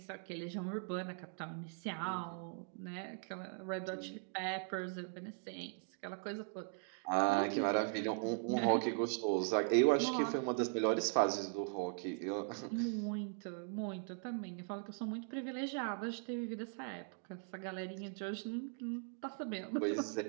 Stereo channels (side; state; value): left; silent; 51 dB below the other